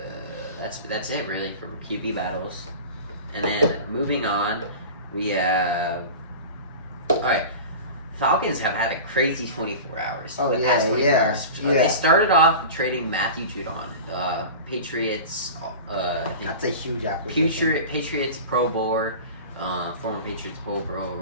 That's it really for QB battles. And then moving on, we have Falcons have had a crazy 24 hours. Oh, the past 24 hours. They started off trading Matthew Judon. Patriots. That's a huge acquisition. Patriots Pro Bowler, former Patriots Pro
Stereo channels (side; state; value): both; inverted; correlation -0.33